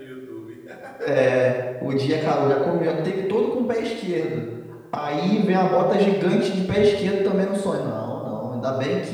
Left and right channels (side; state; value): both; identical; correlation 1.00